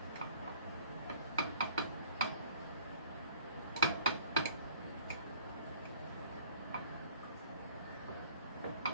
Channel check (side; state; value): both; inverted; correlation -0.52